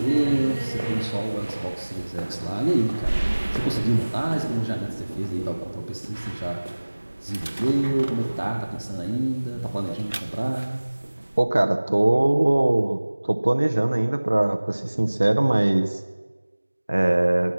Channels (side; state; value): both; inverted; correlation -1.00